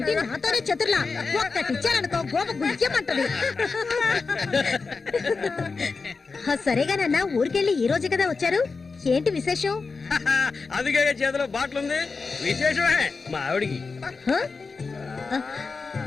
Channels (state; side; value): quieter; right; 4.4 dB